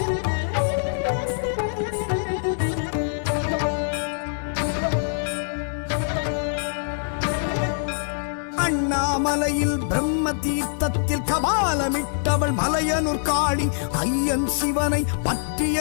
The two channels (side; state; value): right; silent; digital silence